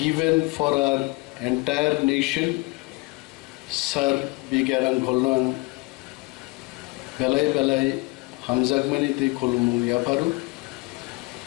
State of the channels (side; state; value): right; quieter; 25.4 dB